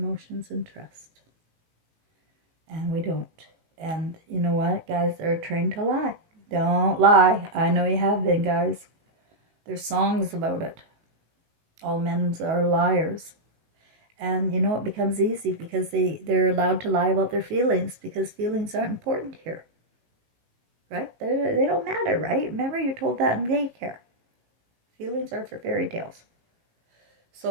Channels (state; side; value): late; left; 18 ms